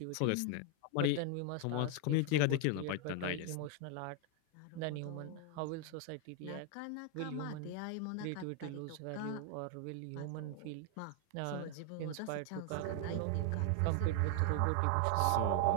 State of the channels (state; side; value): different; both; correlation 0.01